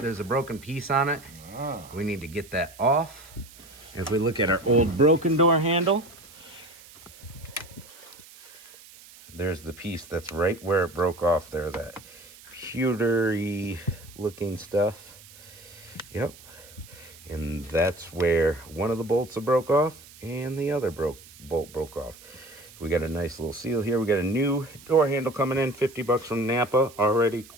a broken piece on it. We need to get that off. If we look at our old broken door handle, there's the piece that's right where it broke off there, that pewtery looking stuff. Yep. And that's where one of the bolts broke off and the other bolt broke off. We got a nice little seal here. We got a new door handle coming in, 50 bucks from Napa, already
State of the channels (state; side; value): noise; right; hiss, 21 dB below the sound